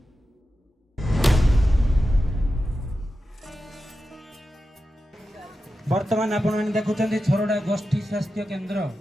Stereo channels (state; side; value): normal; both; correlation 0.91